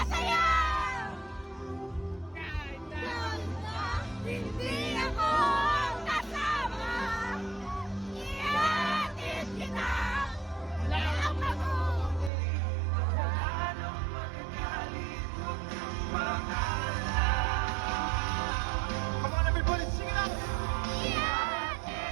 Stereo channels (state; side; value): drops out; left; at 12.3 s